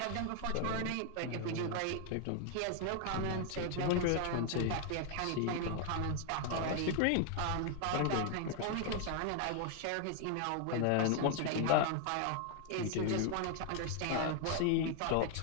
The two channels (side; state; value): both; different; correlation 0.00